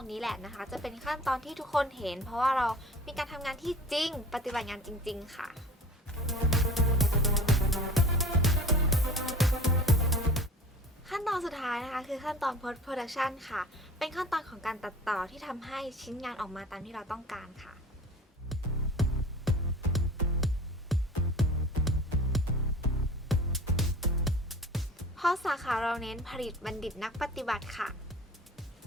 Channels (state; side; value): normal; both; correlation 0.41